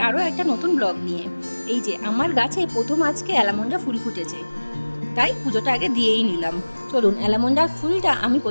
আরও একটা নতুন ব্লগ নিয়ে। এই যে আমার গাছে প্রথম আজকে অ্যালামন্ডা ফুল ফুটেছে, তাই পুজোটা আগে দিয়েই নিলাম। চলুন, অ্যালামন্ডার ফুলটা আমি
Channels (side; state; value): both; inverted; correlation -1.00